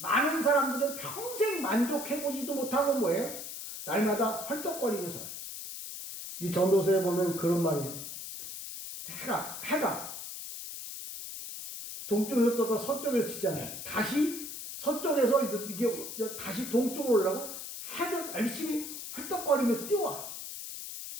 사람들은 평생 만족해보지도 못하고 뭐예요? 날마다 헐떡거리고 살아요. 이 전도서에 보면 그런 말이에요. 해가 동쪽에서 떠다 서쪽에서 치잖아요. 다시 서쪽에서 이게 다시 동쪽으로 올라가고 해가 열심히 헐떡거리며 뛰어와.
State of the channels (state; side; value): noise; left; hiss, 8 dB below the sound